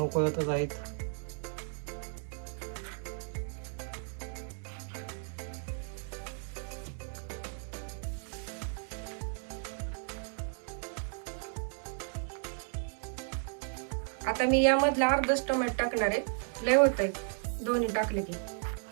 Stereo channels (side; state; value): left; silent; 55 dB below the other